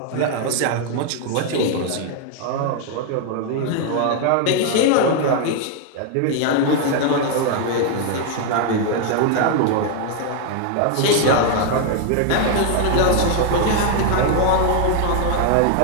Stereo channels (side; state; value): both; different; correlation 0.00